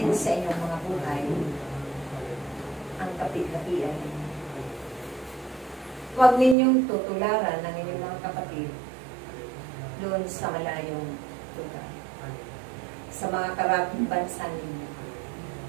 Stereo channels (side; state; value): left; drops out; at 6.6 s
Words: sa inyong mga buhay ang kapit-kapian. Huwag ninyong tutularan ng inyong mga kapatid doon sa malayong lugar, sa mga karaping bansa ninyo,